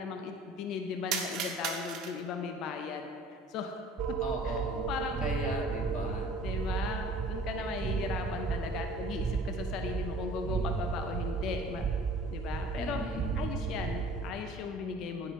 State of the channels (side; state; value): both; normal; correlation 0.48